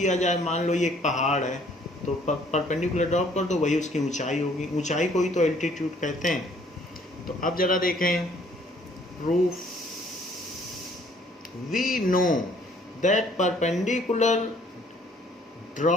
जाए, मान लो ये एक पहाड़ है, तो परपेंडिकुलर ड्रॉप कर दो, वही उसकी ऊंचाई होगी, ऊंचाई को ही तो एल्टीट्यूड कहते हैं। तो अब जरा देखें proof. We know that perpendicular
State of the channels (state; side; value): normal; both; correlation 0.60